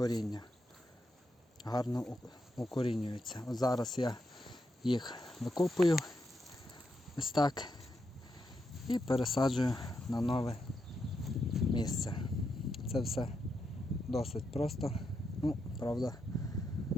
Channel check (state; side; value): normal; both; correlation 0.83